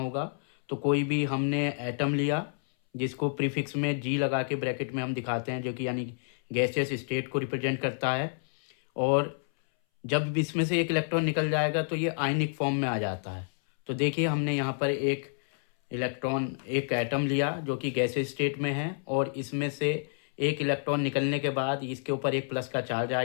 तो कोई भी हमने एटम लिया जिसको प्रीफिक्स में G लगा के ब्रैकेट में हम दिखाते हैं, जो कि यानी गैसियस स्टेट को रिप्रेजेंट करता है। और जब इसमें से एक इलेक्ट्रॉन निकल जाएगा तो ये आयनिक फॉर्म में आ जाता है। तो देखिए, हमने यहाँ पर एक एटम लिया जो कि गैसियस स्टेट में है और इसमें से एक इलेक्ट्रॉन निकलने के बाद इसके ऊपर एक प्लस का चार्ज आ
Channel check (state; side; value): silent; right; 58 dB below the other